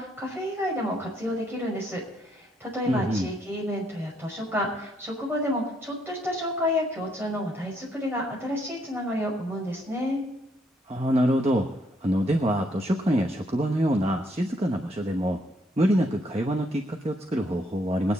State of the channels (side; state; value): both; normal; correlation 0.72